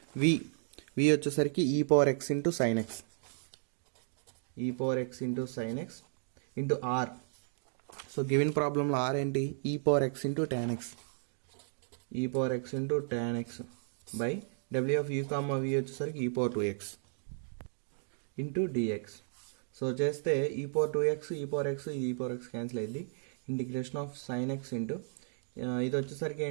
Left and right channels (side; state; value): left; silent; digital silence